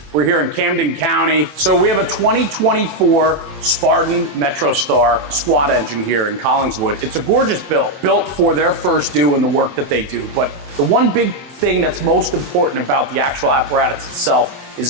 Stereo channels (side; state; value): left; late; 24 ms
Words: We're here in Camden County. So we have a 2024 Spartan MetroStar squad engine here in Collingswood. It's a gorgeous built for their first due and the work that they do. But the one big thing that's most important about the actual apparatus itself is